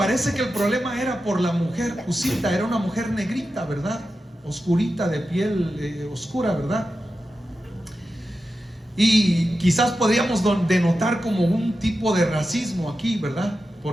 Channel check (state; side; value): normal; both; correlation 0.91